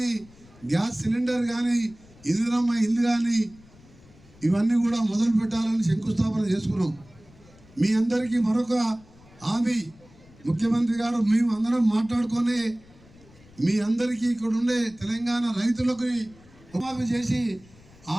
గ్యాస్ సిలిండర్ కానీ, ఇందిరమ్మ ఇల్లు కానీ ఇవన్నీ కూడా మొదలు పెట్టాలని శంకుస్థాపన చేసుకున్నాం. మీ అందరికీ మరొక హామీ ముఖ్యమంత్రి గారు మేము అందరం మాట్లాడుకొని మీ అందరికీ ఇక్కడ ఉండే తెలంగాణ రైతులకు రుణమాఫీ చేసి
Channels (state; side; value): noise; left; rumble, 25 dB below the sound